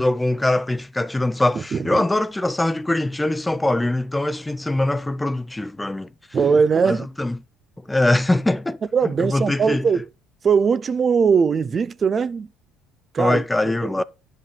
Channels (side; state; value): both; normal; correlation 0.90